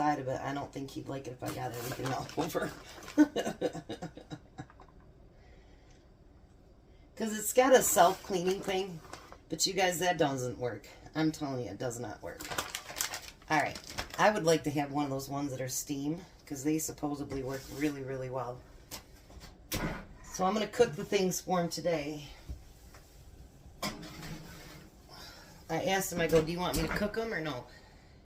of it, I don't think he'd like it if I got everything all over. Because it's got a self-cleaning thing, but you guys, that doesn't work. I'm telling you, it does not work. Alright, I would like to have one of those ones that are steam, because they supposedly work really, really well. So I'm going to cook the things for him today. I asked him, I go, do you want me to cook them or no?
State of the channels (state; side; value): identical; both; correlation 1.00